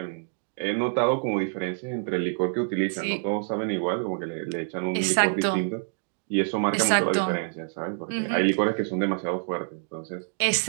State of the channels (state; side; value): silent; left; digital silence